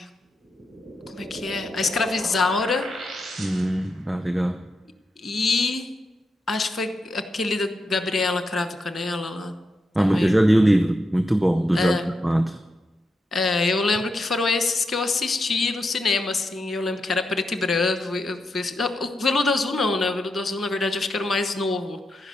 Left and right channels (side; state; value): both; normal; correlation 0.85